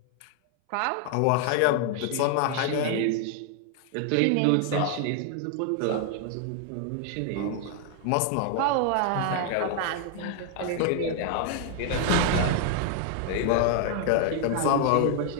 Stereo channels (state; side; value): different; both; correlation 0.00